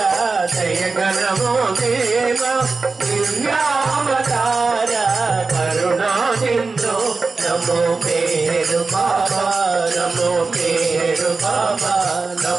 దయగణమో దేవా దుర్యావతార కరుణా సింధు నమో పేరు బాబా నమో పేరు బాబా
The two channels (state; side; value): quieter; left; 4.1 dB